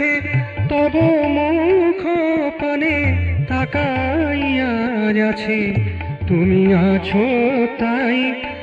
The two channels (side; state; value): both; identical; correlation 1.00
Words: তব মুখ পানে তাকাইয়া আছে। তুমি আছো তাই